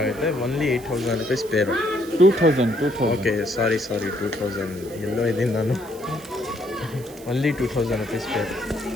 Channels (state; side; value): noise; right; hiss, 20 dB below the sound